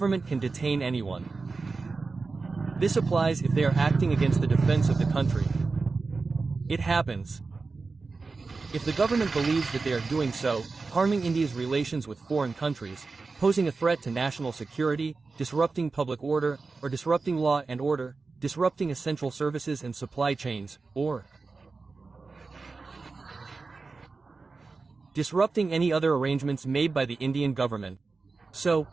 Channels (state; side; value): quieter; left; 4.1 dB